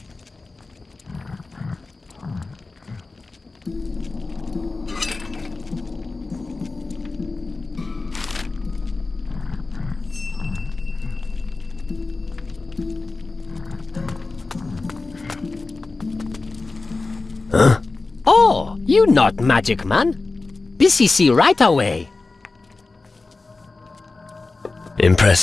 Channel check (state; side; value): quieter; right; 3.6 dB